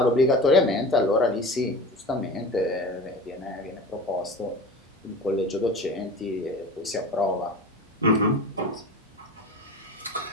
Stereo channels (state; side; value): normal; both; correlation 0.33